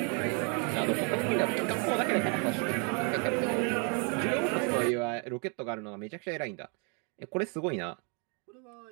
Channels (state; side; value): quieter; left; 37.6 dB